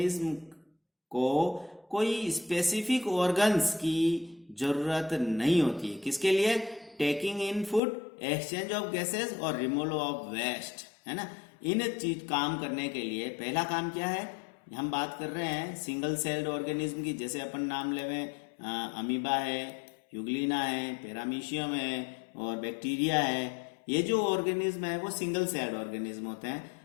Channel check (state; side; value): drops out; right; at 7.8 s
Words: को कोई स्पेसिफिक ऑर्गन्स की जरूरत नहीं होती है। किसके लिए? Taking in food, exchange of gases और रिमूवल ऑफ वेस्ट, है ना। इन चीज काम करने के लिए पहला काम क्या है, हम बात कर रहे हैं सिंगल सेल्ड ऑर्गेनिज्म की, जैसे अपन नाम लेवे अमीबा है, यूग्लिना है, पैरामीशियम है और बैक्टीरिया है। ये जो ऑर्गेनिज्म है वो सिंगल सेल्ड ऑर्गेनिज्म होते हैं।